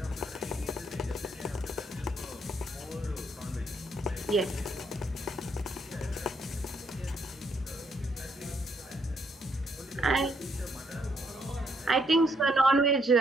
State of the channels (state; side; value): normal; both; correlation 0.72